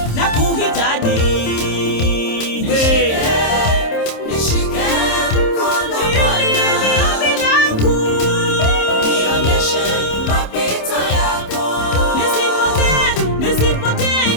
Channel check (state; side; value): late; right; 27 ms